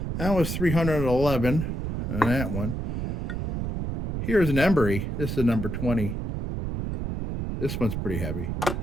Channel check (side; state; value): right; noise; rumble, 3 dB below the sound